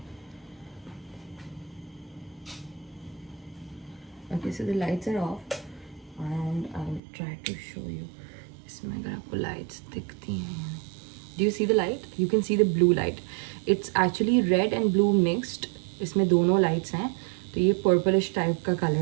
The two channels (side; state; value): left; drops out; at 7.0 s